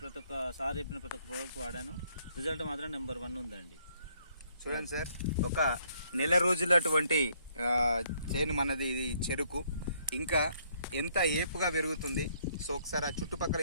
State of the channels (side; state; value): both; inverted; correlation -0.68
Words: ప్రతి ఒక్క సార్ చెప్పిన ప్రతి ఒక్క ప్రోడక్ట్ వాడాను. రిజల్ట్ మాత్రం నెంబర్ 1 ఉందండి. చూడండి సార్, ఒక నెల రోజులటువంటి చేను మనది. ఇది చెరుకు ఇంకా ఎంత ఏపుగా పెరుగుతుంది. సో ఒకసారి ఆ చుట్టుపక్కల